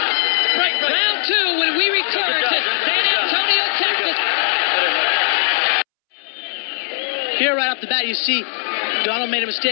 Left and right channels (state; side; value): silent; right; 67 dB below the other